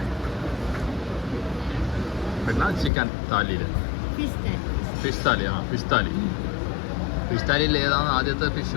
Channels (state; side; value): drops out; right; at 2.9 s